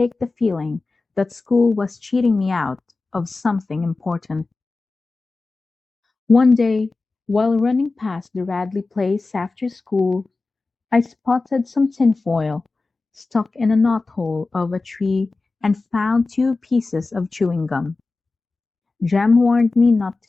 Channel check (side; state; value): right; quieter; 3.6 dB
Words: the feeling that school was cheating me out of something important. One day, while running past the Radley place after school, I spotted some tinfoil stuck in a knothole of a tree and found 2 pieces of chewing gum. Jem warned me not